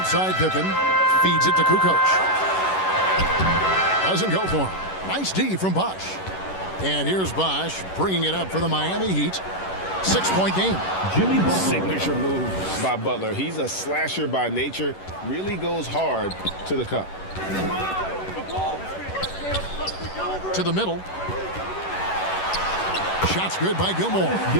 Pippen. Feeds it to Kukoc. Doesn't go for him. Nice D from Bosch. And here's Bosch bringing it up for the Miami Heat. 6-point game. Signature move by Butler. He's a slasher by nature. Really goes hard to the cup. To the middle. Shots good by Gilmore.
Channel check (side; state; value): right; late; 11 ms